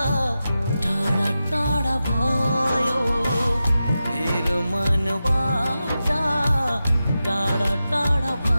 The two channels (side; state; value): both; inverted; correlation -0.92